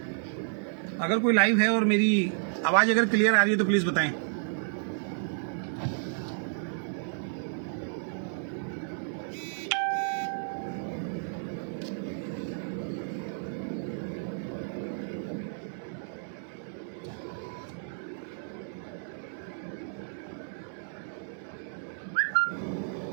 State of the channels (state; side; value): silent; left; digital silence